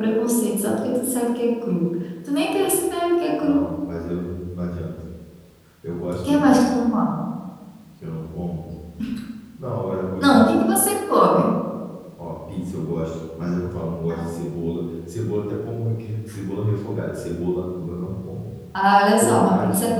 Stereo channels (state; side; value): identical; both; correlation 1.00